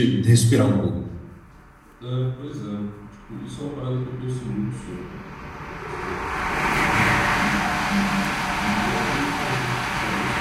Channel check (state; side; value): identical; both; correlation 1.00